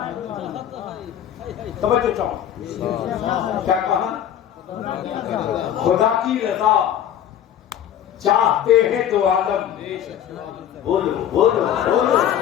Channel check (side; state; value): right; quieter; 10.1 dB